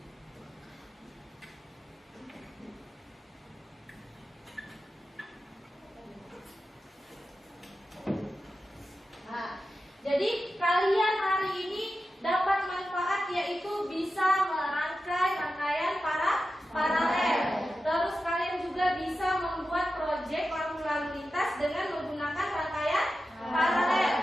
jadi kalian hari ini dapat manfaat yaitu bisa merangkai rangkaian paralel. Terus kalian juga bisa membuat proyek lampu lalu lintas dengan menggunakan rangkaian paralel.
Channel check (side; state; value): both; normal; correlation 0.92